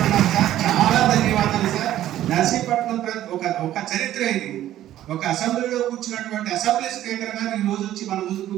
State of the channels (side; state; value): left; quieter; 12.9 dB